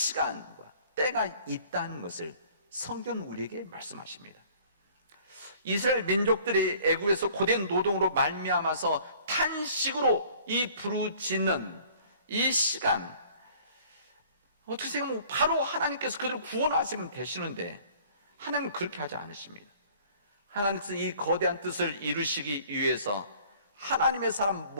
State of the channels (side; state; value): both; inverted; correlation -0.53